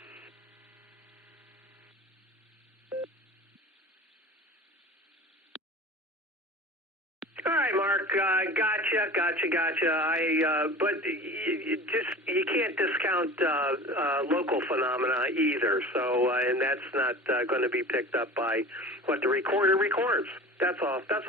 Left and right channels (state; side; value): normal; both; correlation 0.37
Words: All right, Mark. Gotcha. But you can't discount local phenomena either. So, and that's not going to be picked up by what the recorder records. That's all